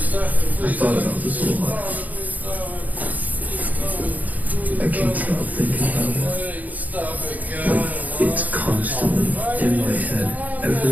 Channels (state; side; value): late; left; 0.079 ms